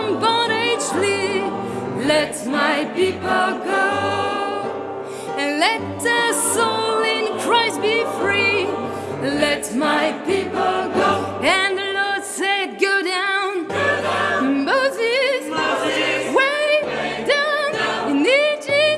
bondage flee. Let my people go. And let their soul in Christ be free. Let my people go. And the Lord said, go down. Moses, way down in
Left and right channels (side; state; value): both; identical; correlation 1.00